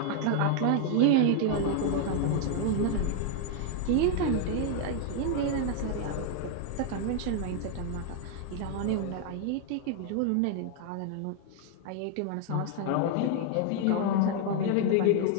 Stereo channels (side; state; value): both; different; correlation 0.00